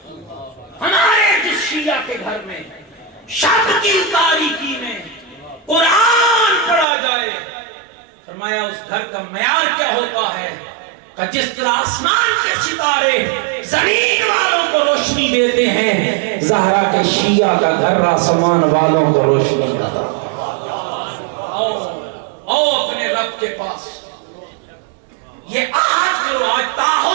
ہمارے جس شیعہ کے گھر میں شب کی تاریکی میں قرآن پڑھا جائے، فرمایا اس گھر کا معیار کیا ہوتا ہے کہ جس طرح آسمان کے ستارے زمین والوں کو روشنی دیتے ہیں، زہرا کے شیعہ کا گھر آسمان والوں کو روشنی آتا۔ آؤ اپنے رب کے پاس، یہ آج کرو، آج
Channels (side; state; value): left; drops out; at 6.9 s